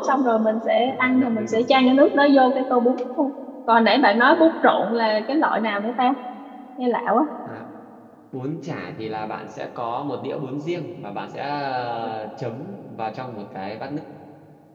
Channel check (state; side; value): identical; both; correlation 1.00